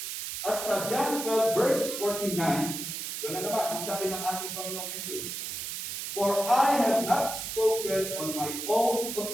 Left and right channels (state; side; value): noise; right; hiss, 5 dB below the sound